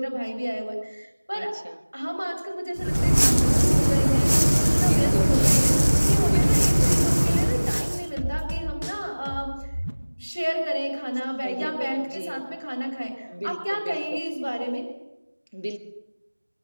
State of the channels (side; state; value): both; inverted; correlation -1.00